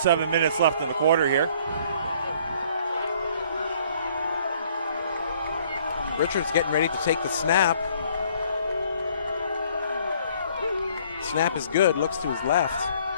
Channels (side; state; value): both; inverted; correlation -0.60